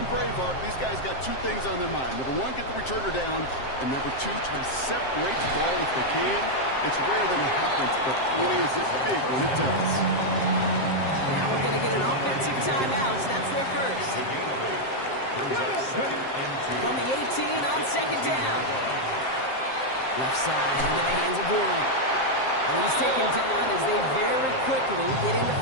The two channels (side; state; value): right; late; 7.6 ms